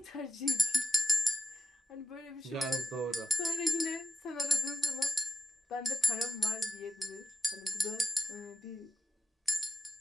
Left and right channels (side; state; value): both; normal; correlation 0.89